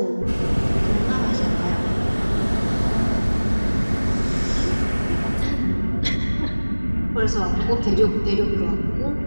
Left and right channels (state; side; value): inverted; both; correlation -1.00